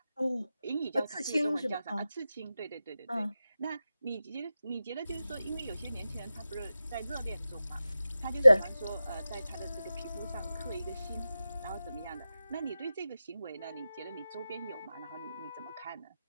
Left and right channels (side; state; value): both; inverted; correlation -0.93